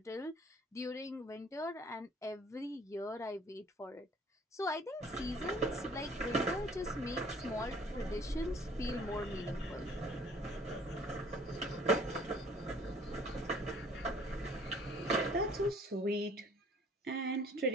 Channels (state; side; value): normal; both; correlation 0.55